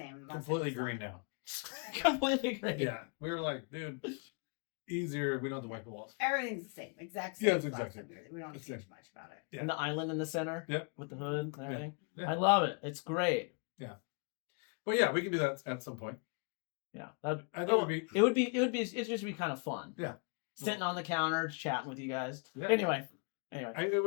Completely green now. Completely green. Yeah. We were like, dude, easier. We don't have to wipe the walls. Everything's the same. Exact same. Yeah, it's exactly. We don't change much about it. Yeah. And the island in the center. Yep. With the hood and everything. Yeah. I love it. It's great. Yeah. Well, yeah, we can do that at some point. Yeah, it would just be kind of fun. Yeah, sitting on the counter chatting with you guys. Yeah. Anyway, it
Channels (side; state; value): right; quieter; 36.5 dB